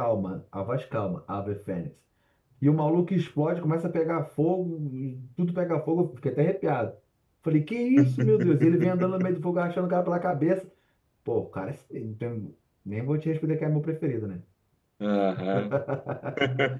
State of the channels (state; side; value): identical; both; correlation 1.00